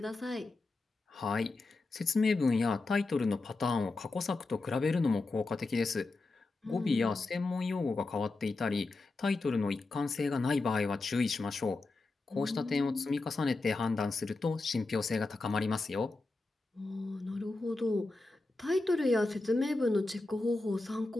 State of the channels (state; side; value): quieter; right; 3.4 dB